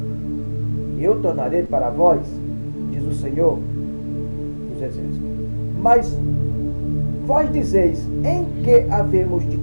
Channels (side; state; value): both; inverted; correlation -1.00